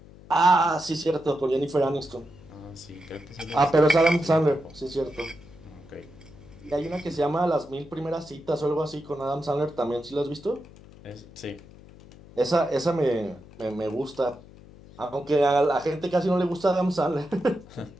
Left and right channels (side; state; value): left; noise; hum, 21 dB below the sound